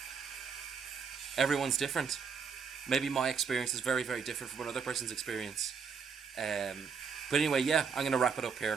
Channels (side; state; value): left; quieter; 6.0 dB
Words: everyone's different. Maybe my experience is very, very different from another person's experience. But anyway, yeah, I'm going to wrap it up